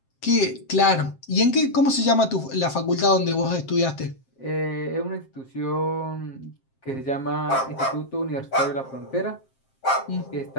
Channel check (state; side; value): late; right; 7.6 ms